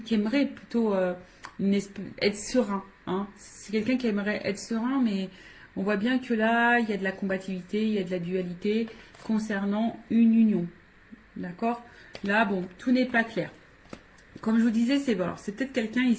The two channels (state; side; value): identical; both; correlation 1.00